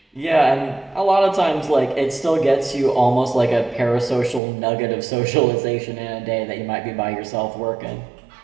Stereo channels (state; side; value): drops out; left; at 4.4 s